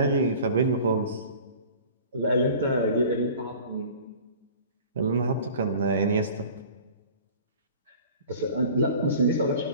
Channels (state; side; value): inverted; both; correlation -0.44